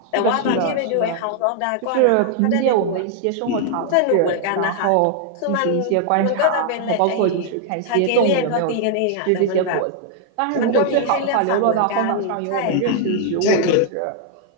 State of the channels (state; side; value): different; both; correlation 0.00